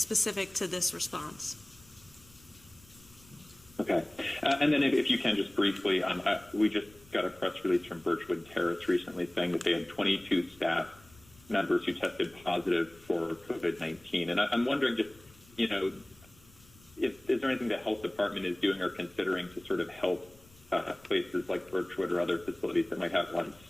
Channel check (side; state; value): left; noise; rumble, 26 dB below the sound